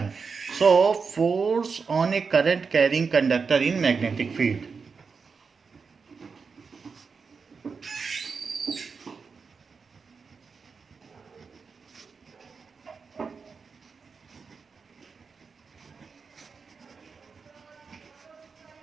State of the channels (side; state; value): left; quieter; 5.2 dB